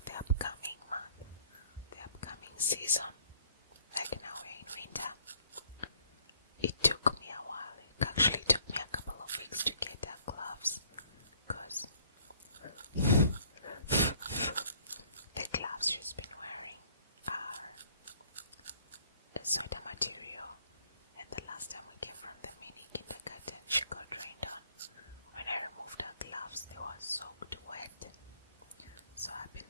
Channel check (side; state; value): both; inverted; correlation -0.60